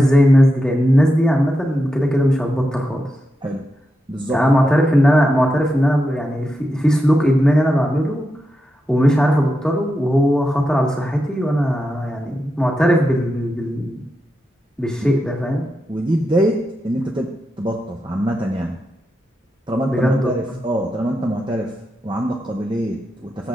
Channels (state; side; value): normal; both; correlation 0.88